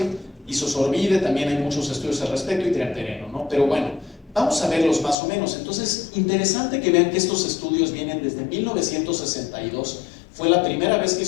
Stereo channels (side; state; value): right; drops out; at 5.2 s